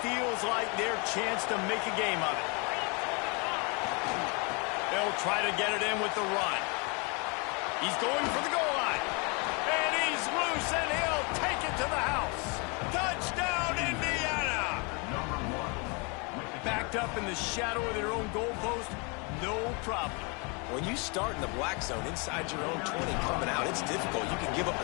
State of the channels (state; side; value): quieter; right; 32.0 dB